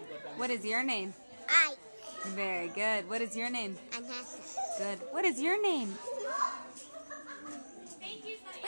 What is your name? I. Very good. What is your name? Anasa. Good. What is your name?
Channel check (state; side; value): inverted; both; correlation -1.00